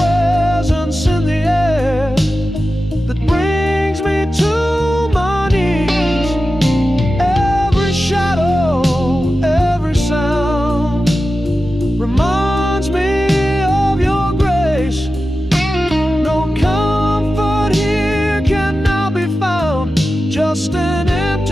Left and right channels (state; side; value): normal; both; correlation 0.93